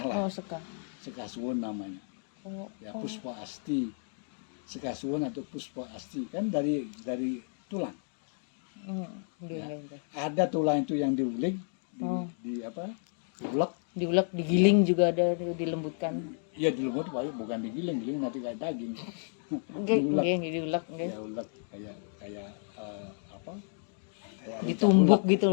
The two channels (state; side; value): silent; right; digital silence